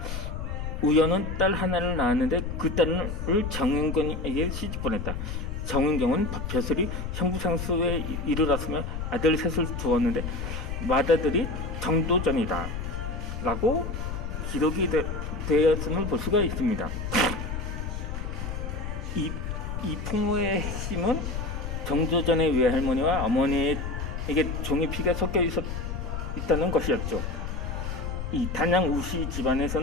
우연은 딸 하나를 낳았는데 그 딸을 정은경에게 시집 보냈다. 정은경은 벼슬이 형부상수에 이르렀으며 아들 셋을 두었는데 맏아들이 정도전이다 라고 기록이 되었음을 볼 수가 있습니다. 이 이 풍무의 핵심은 정조전의 외할머니와 어머니에게 종의 피가 섞여 있다는 것이었죠. 이 단양 우씨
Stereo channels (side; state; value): left; noise; rumble, 5 dB below the sound